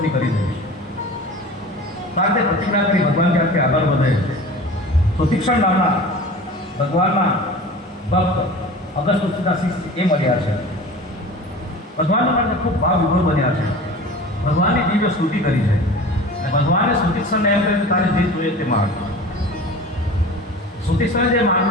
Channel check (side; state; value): both; normal; correlation 0.38